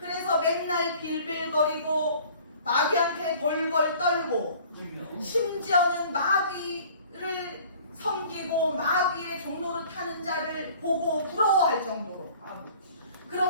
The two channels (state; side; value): inverted; both; correlation -0.50